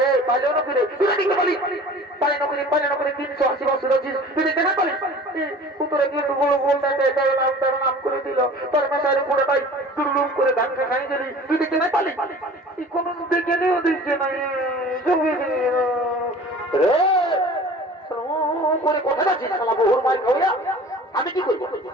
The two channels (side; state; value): both; normal; correlation 0.43